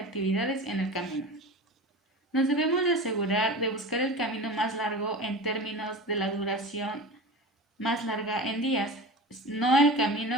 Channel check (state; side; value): normal; both; correlation 0.32